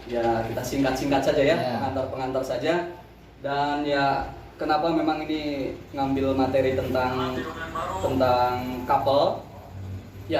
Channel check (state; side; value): identical; both; correlation 1.00